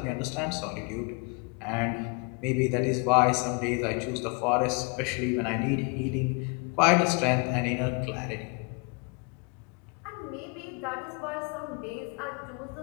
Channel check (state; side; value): quieter; right; 33.3 dB